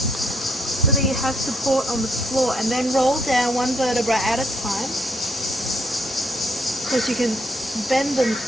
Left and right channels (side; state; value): both; normal; correlation 0.72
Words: so that you have support on the floor, and then roll down one vertebra at a time, because you can bend the